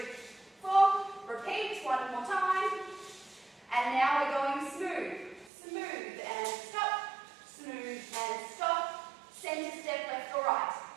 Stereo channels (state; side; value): drops out; left; at 5.5 s